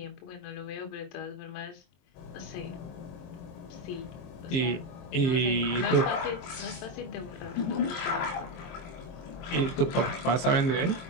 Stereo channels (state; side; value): late; right; 23 ms